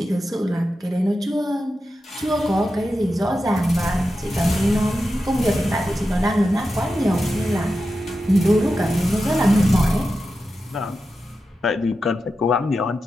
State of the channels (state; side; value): normal; both; correlation 0.90